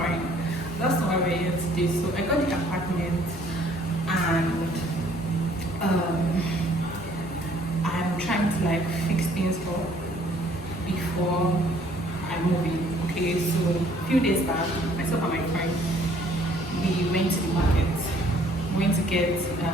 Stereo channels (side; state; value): both; normal; correlation 0.60